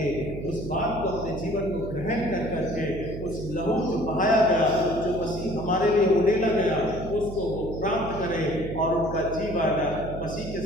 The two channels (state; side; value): noise; right; hum, 9 dB below the sound